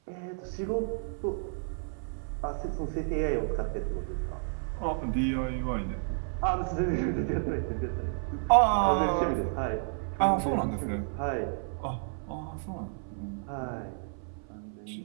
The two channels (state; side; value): silent; left; 57 dB below the other